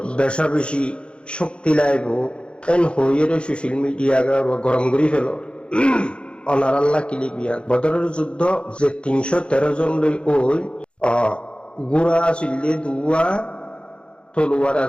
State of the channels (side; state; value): right; late; 0.057 ms